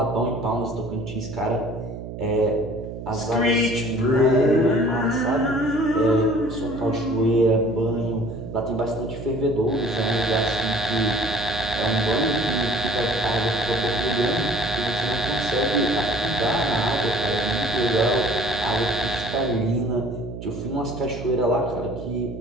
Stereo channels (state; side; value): noise; right; hum, 9 dB below the sound